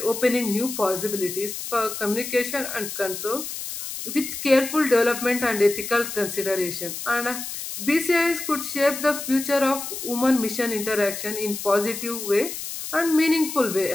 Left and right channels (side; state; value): left; noise; hiss, 7 dB below the sound